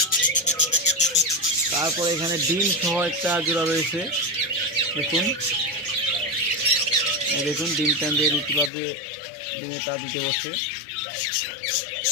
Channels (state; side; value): drops out; right; at 8.7 s